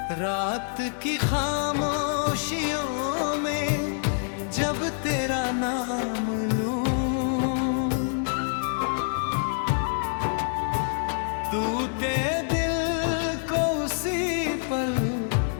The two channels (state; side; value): silent; right; 61 dB below the other